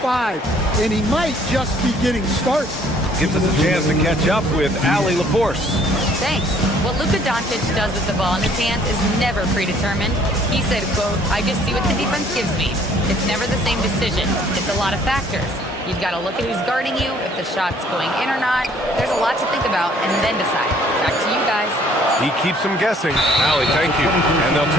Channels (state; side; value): normal; both; correlation 0.59